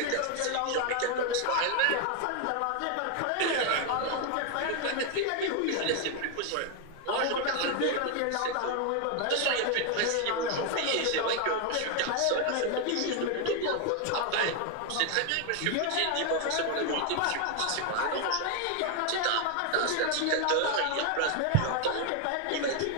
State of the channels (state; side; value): different; both; correlation 0.01